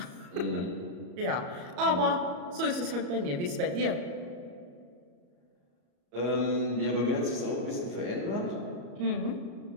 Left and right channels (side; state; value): left; late; 34 ms